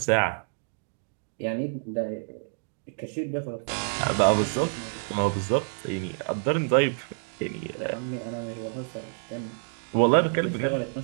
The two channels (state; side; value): silent; left; digital silence